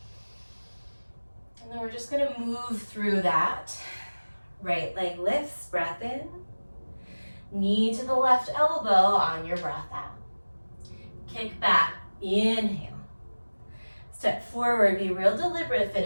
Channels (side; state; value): both; inverted; correlation -1.00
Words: And then we're just gonna move through that. Right leg lifts, breath in. Knee to the left elbow on your breath out. Kick back, inhale. Step forward, be real deliberate.